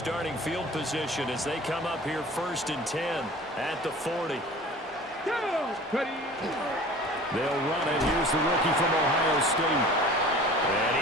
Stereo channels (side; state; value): both; normal; correlation 0.43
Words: field position as they come up here 1st and 10 at the 40. They'll run it. Here's the rookie from Ohio State. And